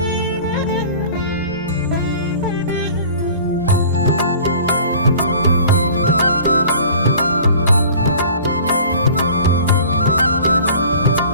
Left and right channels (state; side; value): inverted; both; correlation -0.45